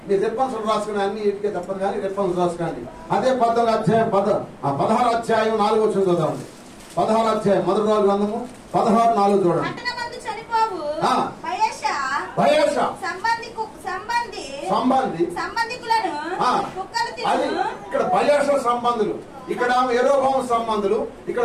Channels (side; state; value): both; identical; correlation 1.00